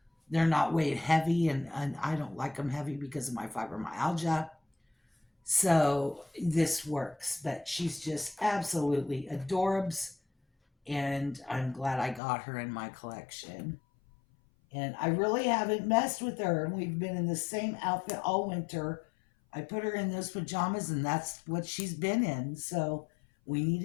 they're not weight heavy, and I don't like them heavy because of my fibromyalgia. So this works, but she's just absolutely adorbs, and I'm glad I got her in my collection. And I really haven't messed with her. We've been in the same outfit all winter. I put her in those pajamas, and that's what she's been in. So we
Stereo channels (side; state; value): right; drops out; at 12.2 s